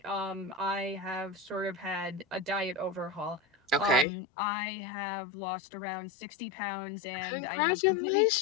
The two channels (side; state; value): right; drops out; at 4.0 s